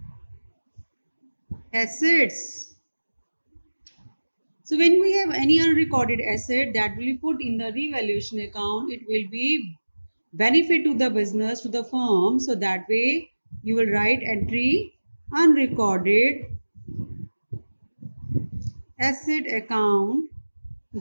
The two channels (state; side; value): inverted; both; correlation -1.00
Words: assets. So when we have any unrecorded asset that will be put in the revaluation account, it will be benefit to the business, to the firm. So that way you will write entry unrecorded asset account